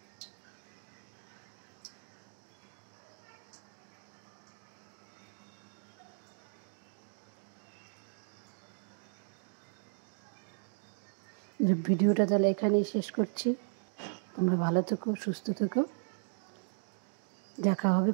ভিডিওটা তাহলে এখানেই শেষ করছি। তোমরা ভালো থেকো, সুস্থ থেকো। দেখা হবে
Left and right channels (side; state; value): left; silent; digital silence